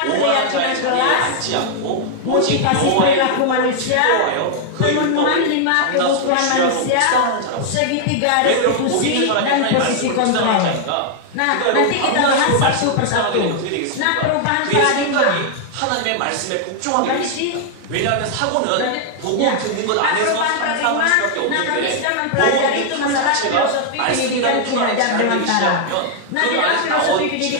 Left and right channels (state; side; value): different; both; correlation 0.00